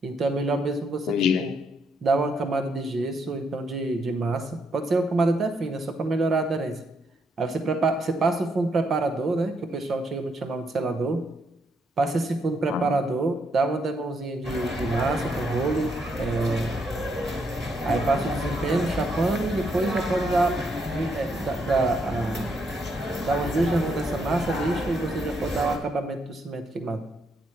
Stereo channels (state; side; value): normal; both; correlation 0.76